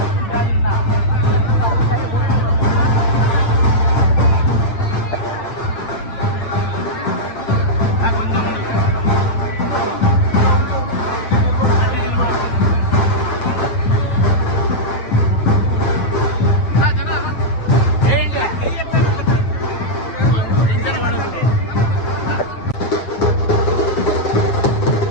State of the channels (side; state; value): right; late; 8.0 ms